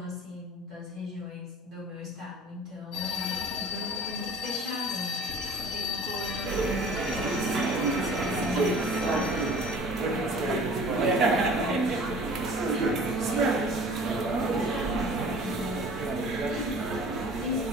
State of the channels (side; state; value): both; normal; correlation 0.46